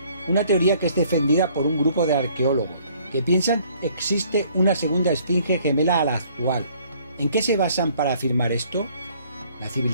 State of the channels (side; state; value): both; inverted; correlation -0.60